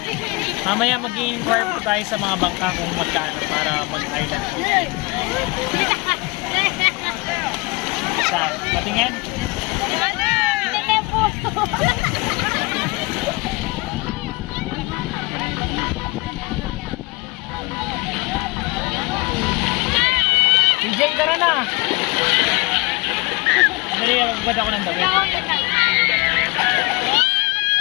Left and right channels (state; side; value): quieter; right; 25.5 dB